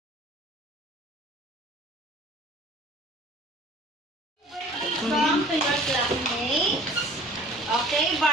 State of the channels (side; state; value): both; normal; correlation 0.48